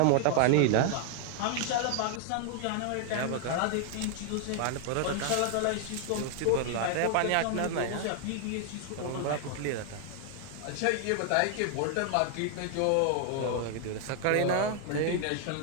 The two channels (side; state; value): both; different; correlation 0.00